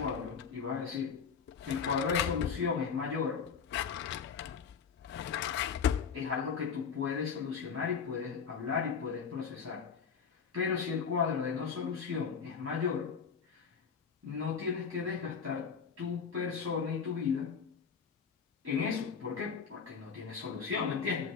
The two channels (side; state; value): right; quieter; 6.3 dB